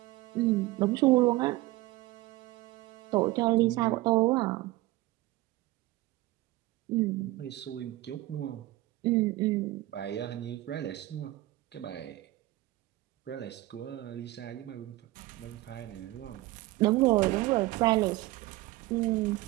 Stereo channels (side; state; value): left; quieter; 18.4 dB